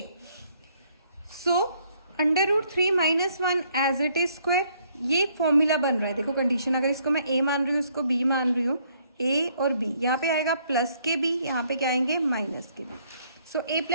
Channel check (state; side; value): inverted; both; correlation -0.66